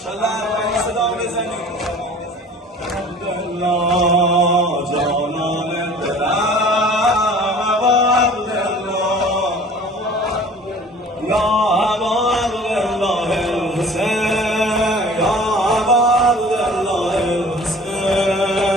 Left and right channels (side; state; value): both; normal; correlation 0.46